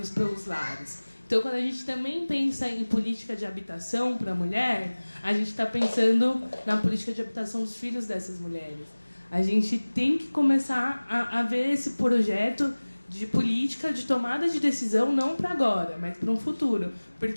pelos lares. Então, quando a gente também pensa em política de habitação para a mulher, a gente está pensando na política de habitação dos filhos dessas mulheres. A gente tem que começar a ver esse projeto de política, de tomada de decisão, não para agora, mas para um futuro.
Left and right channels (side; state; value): both; inverted; correlation -1.00